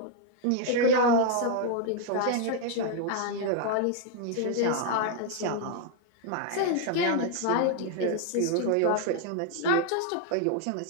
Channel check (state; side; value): different; both; correlation 0.00